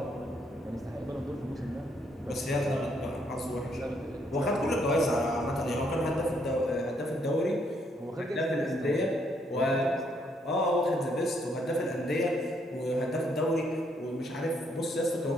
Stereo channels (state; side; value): normal; both; correlation 0.72